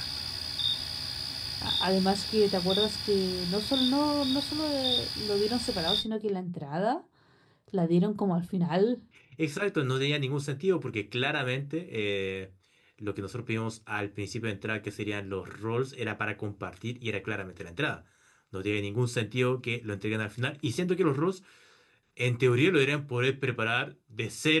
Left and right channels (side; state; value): both; identical; correlation 1.00